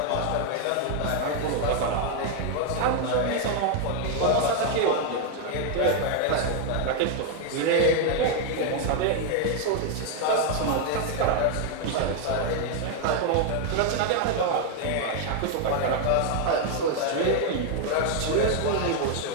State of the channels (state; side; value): different; both; correlation 0.00